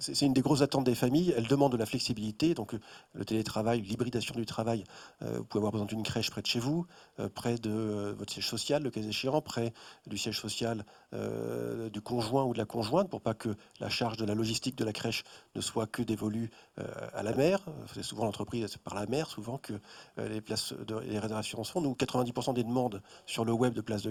une des grosses attentes des familles. Elles demandent de la flexibilité, donc le télétravail, l'hybridation du travail. Vous pouvez avoir besoin d'une crèche près de chez vous, près de votre siège social, le cas échéant, près du siège social du conjoint ou de la conjointe, pour pas que la charge de la logistique de la crèche ne soit que dévolue à la mère. C'est souvent l'entreprise, c'est par la mère, souvent que les réservations se font. Nous, 90% des demandes sur le web de places de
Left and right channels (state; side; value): identical; both; correlation 1.00